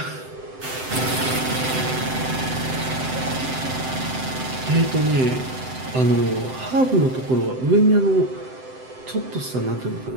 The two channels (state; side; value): late; left; 7.8 ms